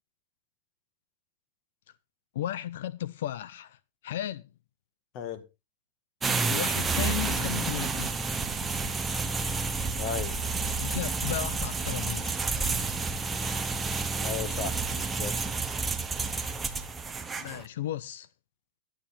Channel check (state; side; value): normal; both; correlation 0.51